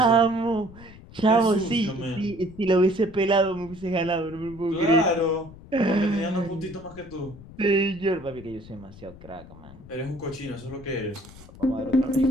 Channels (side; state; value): left; noise; rumble, 19 dB below the sound